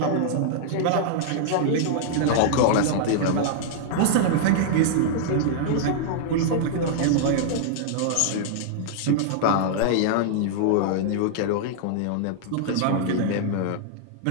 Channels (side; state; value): both; different; correlation -0.01